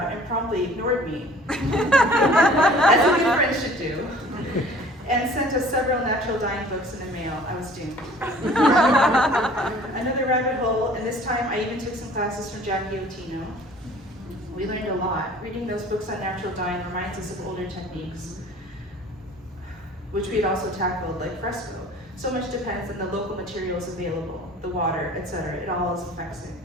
and promptly ignored me, as a good friend should do, and sent us several natural dyeing books in the mail. I was doomed. Another rabbit hole, and this time I even took some classes from Jackie Otino. We learned a lot. Reading those books on natural dyeing reminds us of older techniques, which we had also tackled, like fresco. So much depends on the local materials available, the water, etc. It all affects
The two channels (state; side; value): normal; both; correlation 0.49